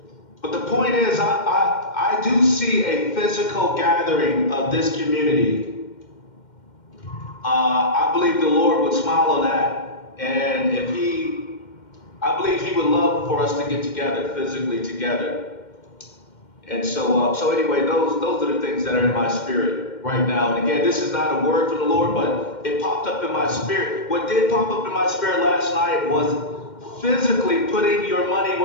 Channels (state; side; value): late; right; 2.1 ms